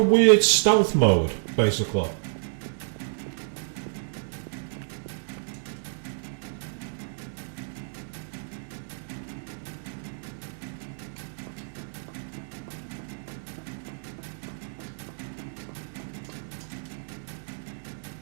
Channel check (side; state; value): left; silent; digital silence